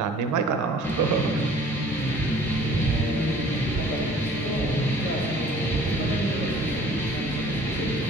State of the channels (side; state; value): both; normal; correlation 0.51